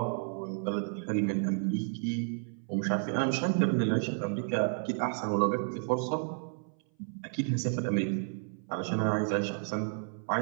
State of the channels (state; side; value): silent; left; 57 dB below the other